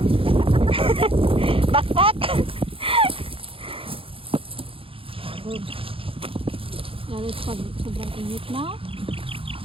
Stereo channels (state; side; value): late; left; 0.27 ms